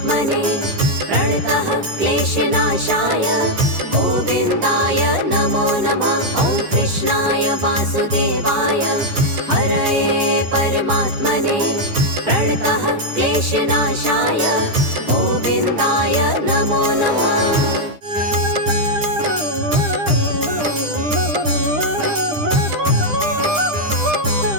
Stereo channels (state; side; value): late; left; 10 ms